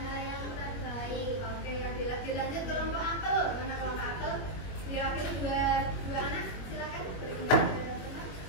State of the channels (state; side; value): late; right; 21 ms